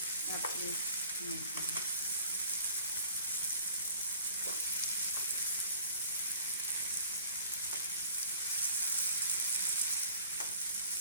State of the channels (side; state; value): both; inverted; correlation -0.49